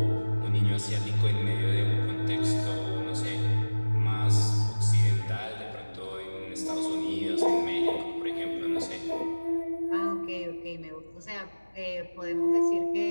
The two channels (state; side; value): inverted; both; correlation -1.00